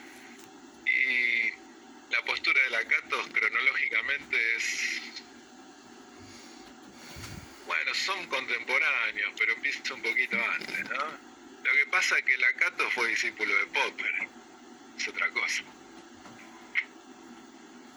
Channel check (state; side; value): identical; both; correlation 1.00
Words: Y la postura de Lakatos cronológicamente es... Bueno, son contemporáneos, pero empieza un poquito antes, ¿no? Lo que pasa es que Lakatos fue discípulo de Popper. Es otra cosa.